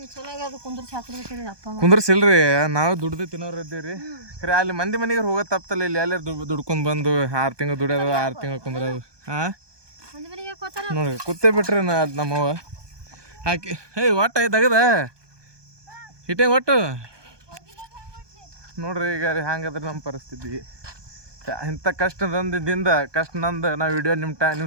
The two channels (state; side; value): late; left; 1.2 ms